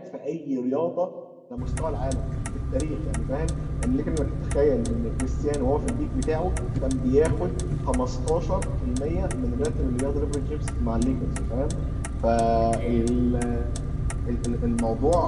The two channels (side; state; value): both; identical; correlation 1.00